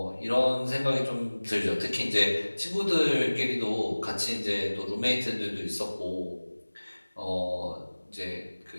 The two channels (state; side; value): inverted; both; correlation -1.00